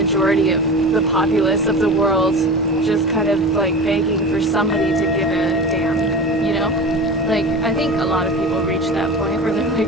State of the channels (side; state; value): both; normal; correlation 0.31